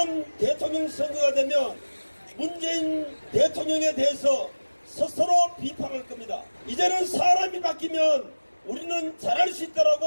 대통령 선거가 되면 문재인 대통령에 대해서 스스로 비판할 겁니다. 이제는 사람이 바뀌면 우리는 잘할 수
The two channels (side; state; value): both; inverted; correlation -1.00